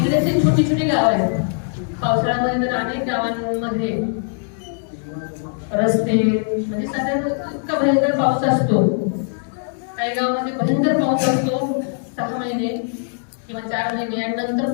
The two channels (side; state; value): right; silent; 65 dB below the other